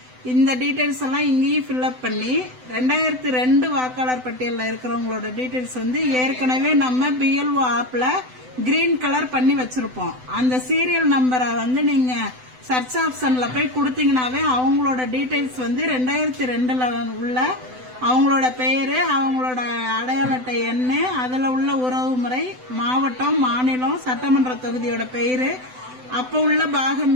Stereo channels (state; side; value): late; left; 7.9 ms